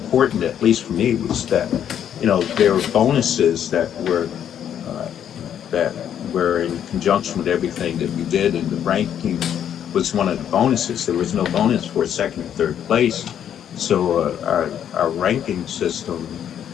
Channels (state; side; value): quieter; right; 9.5 dB